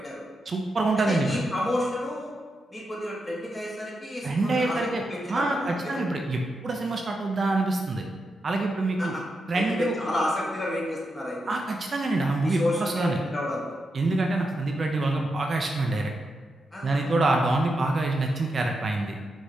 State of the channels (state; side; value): normal; both; correlation 0.86